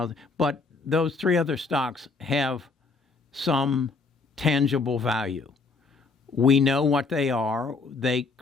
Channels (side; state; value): right; quieter; 4.2 dB